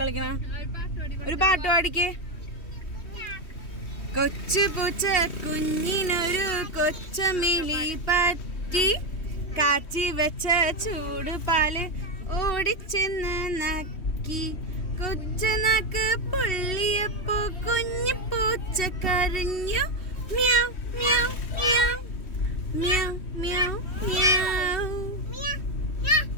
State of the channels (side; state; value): right; late; 3.1 ms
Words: ഒരു പാട്ട് പാടിക്ക്. കൊച്ചു പൂച്ച കുഞ്ഞിനൊരു കൊച്ചമിലി പറ്റി കാച്ചി വെച്ച ചൂട് പാല് ഓടിച്ചെന്ന് നക്കി. കൊച്ചു നാക്ക് പൊള്ളിയപ്പോ കുഞ്ഞു പൂച്ച കരഞ്ഞു. മ്യാവ് മ്യാവ് മ്യാവ് മ്യാവ് മ്യാവ് മ്യാവ്.